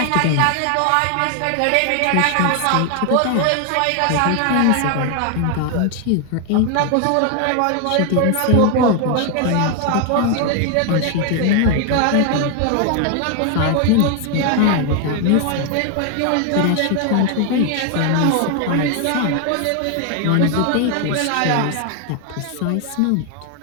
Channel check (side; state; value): both; different; correlation 0.01